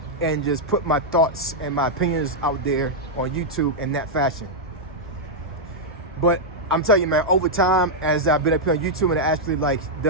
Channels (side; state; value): both; normal; correlation -0.05